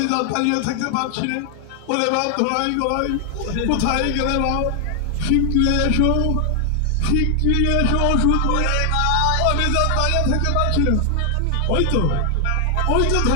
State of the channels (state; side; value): different; both; correlation 0.00